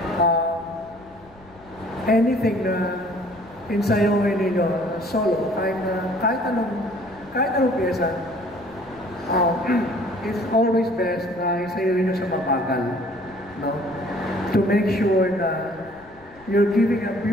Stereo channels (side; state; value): left; noise; rumble, 26 dB below the sound